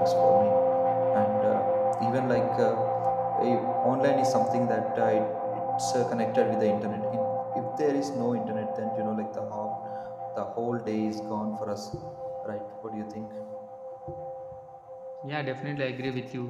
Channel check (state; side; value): identical; both; correlation 1.00